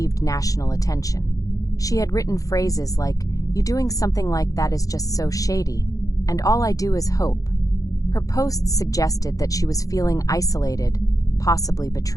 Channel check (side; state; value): right; late; 0.17 ms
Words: national attention. She had written phrases like, "You doing something like that is just so shady," and "all I do is hope." Her posts suggested that she was feeling isolated, possibly